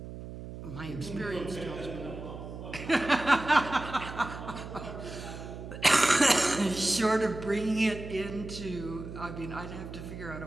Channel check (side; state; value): right; noise; hum, 11 dB below the sound